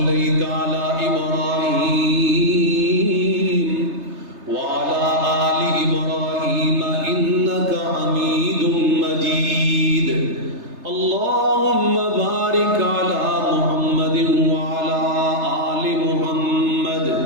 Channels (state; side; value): late; left; 3.3 ms